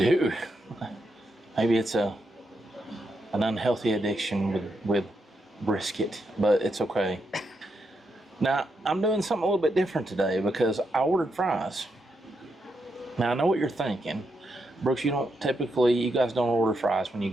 Maybe it's an unhealthy addiction with brisket, but it's okay. Now, I'm doing something a little bit different today because I ordered fries. Now, I know what you're thinking. Brooks, you guys don't order fries when you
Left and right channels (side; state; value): both; normal; correlation 0.82